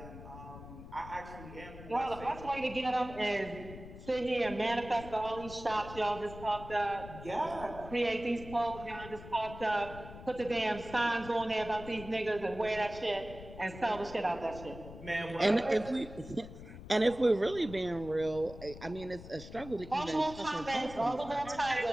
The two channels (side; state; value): left; noise; rumble, 14 dB below the sound